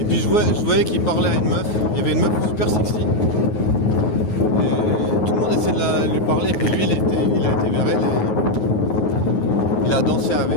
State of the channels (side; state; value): right; late; 9.4 ms